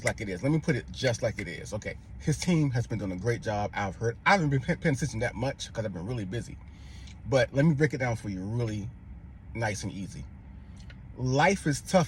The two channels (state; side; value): identical; both; correlation 1.00